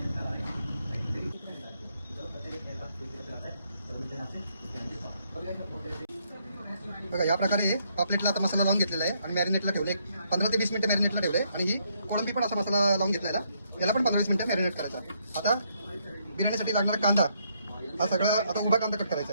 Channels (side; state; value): both; inverted; correlation -0.73